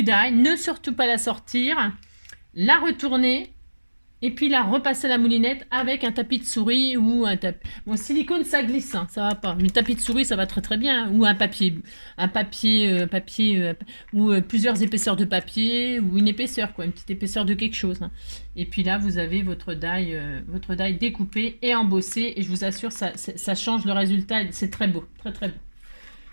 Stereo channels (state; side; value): inverted; both; correlation -1.00